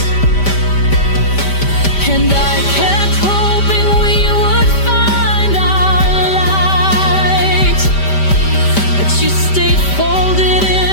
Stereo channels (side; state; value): right; late; 5.1 ms